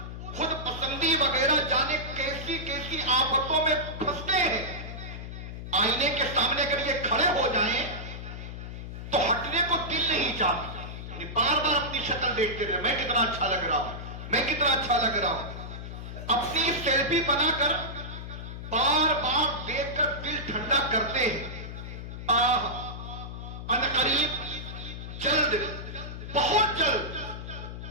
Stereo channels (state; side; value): noise; left; hum, 9 dB below the sound